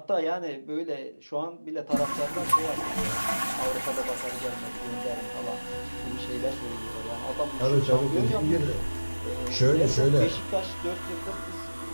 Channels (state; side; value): inverted; both; correlation -1.00